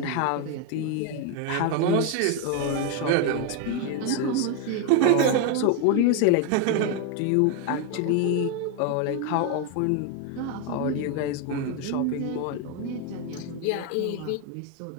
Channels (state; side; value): different; both; correlation 0.01